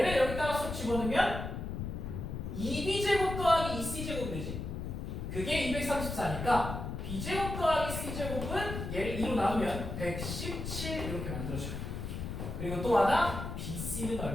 여기다가 쏙 집어넣으면 2B제곱 더하기 2C제곱 되지. 그게 234니까 B제곱 더하기 C제곱은 얘를 2로 나누면 117 이렇게 만들어줘요. 그리고 또 하나 BC는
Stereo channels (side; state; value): left; noise; rumble, 5 dB below the sound